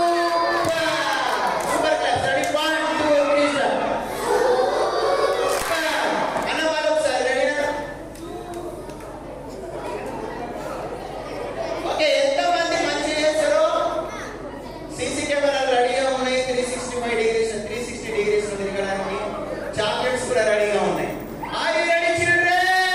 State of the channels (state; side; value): identical; both; correlation 1.00